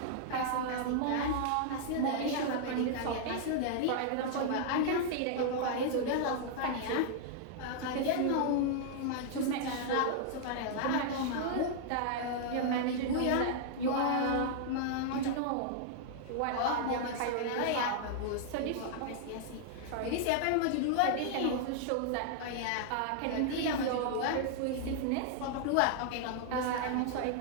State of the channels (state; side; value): different; both; correlation -0.01